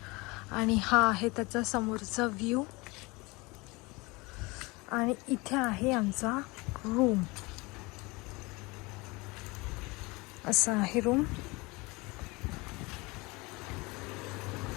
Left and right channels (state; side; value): quieter; right; 24.7 dB